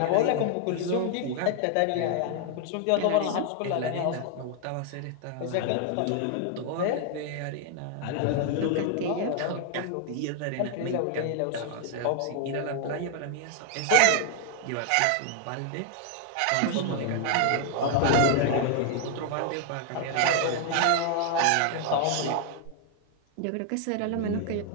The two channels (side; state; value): both; different; correlation 0.00